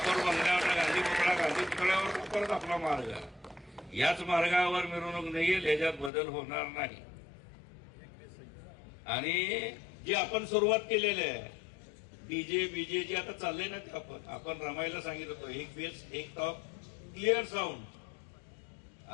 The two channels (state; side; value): drops out; right; at 6.1 s